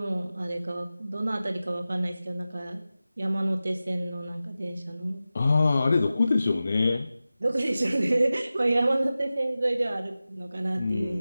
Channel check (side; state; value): both; inverted; correlation -0.95